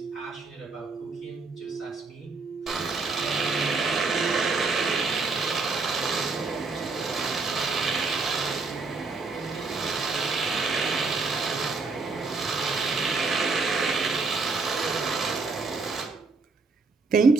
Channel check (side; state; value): left; quieter; 4.1 dB